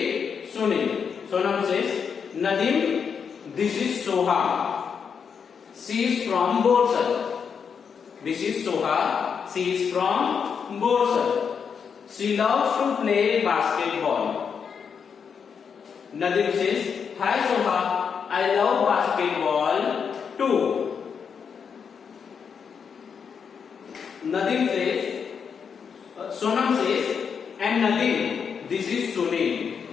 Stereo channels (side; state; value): right; quieter; 6.6 dB